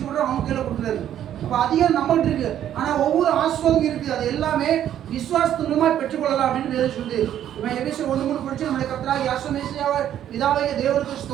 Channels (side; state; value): left; quieter; 10.8 dB